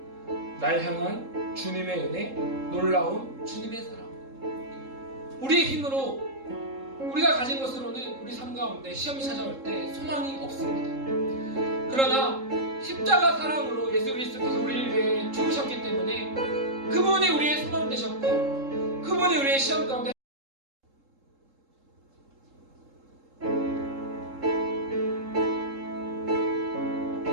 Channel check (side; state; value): left; late; 3.7 ms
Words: 날 향한 주님의 은혜, 놀라운 주님의 사랑. 우리의 힘으로 우리가 가진 것으로는 우리 삶 가운데 시험이 찾아올 때 소망이 없습니다. 그러나 십자가 사랑으로 예수 그리스도께서 우리를 위해 죽으셨기 때문에 그분이 우리의 소망 되셨고 그분이 우리의 시험 가운데